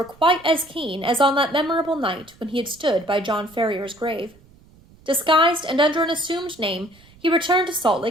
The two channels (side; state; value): right; noise; rumble, 27 dB below the sound